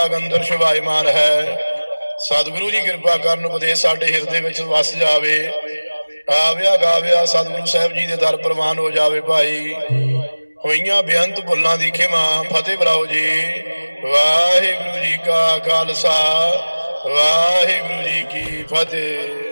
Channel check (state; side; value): inverted; both; correlation -1.00